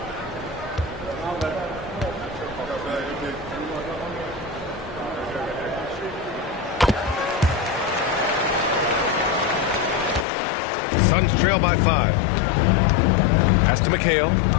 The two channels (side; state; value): right; drops out; at 10.2 s